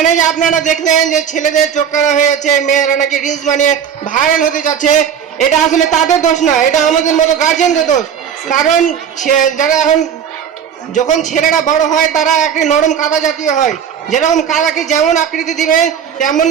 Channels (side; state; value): left; quieter; 8.1 dB